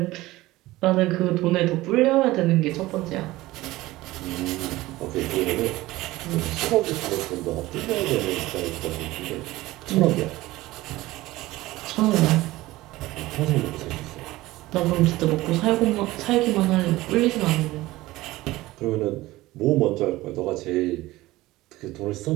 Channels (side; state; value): left; quieter; 18.1 dB